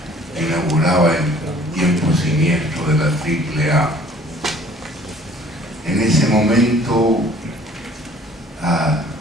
inauguraba el tiempo siniestro de la AAA. En ese momento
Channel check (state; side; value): normal; both; correlation 0.54